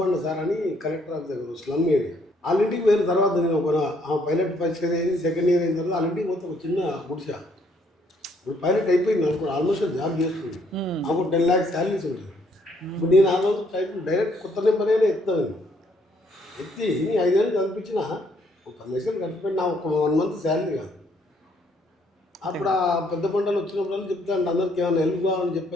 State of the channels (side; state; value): both; normal; correlation 0.68